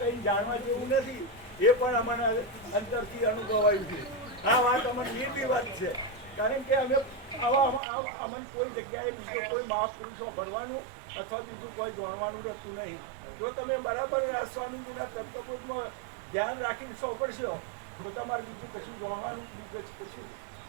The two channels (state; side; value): drops out; left; at 7.8 s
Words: જાણવા જેવું નથી એ પણ અમને અંદરથી અનુભવાયું છે. આ વાત અમને નિર્ભી વાત છે કારણ કે અમે અમને કોઈ જગ્યાએ બીજો કોઈ મહાપુરુષો ભરવાનું અથવા બીજું કોઈ જાણવાનું રહેતું નહીં. જો તમે બરાબર આ સ્વામીજીના તત્વબોધમાં ધ્યાન રાખીને સોંપડશો તો તમારે બીજું કશું જાણવાનું બીજું કશું